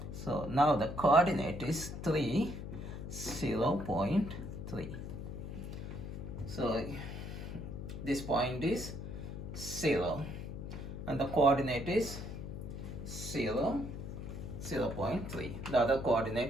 So now the coordinate is 3, 0.3. So this point is 0 and the coordinate is 0, 0.3. The other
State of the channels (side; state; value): left; noise; hum, 7 dB below the sound